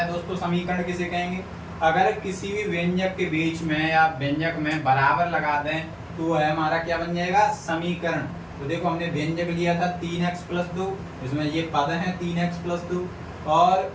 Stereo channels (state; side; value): identical; both; correlation 1.00